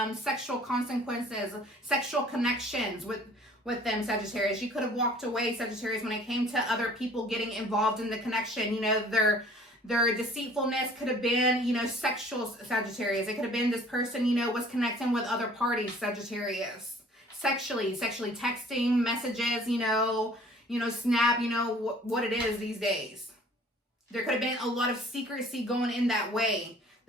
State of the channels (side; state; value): both; normal; correlation 0.52